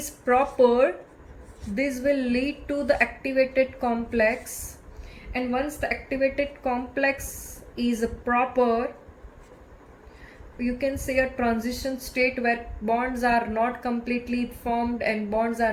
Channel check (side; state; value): both; identical; correlation 1.00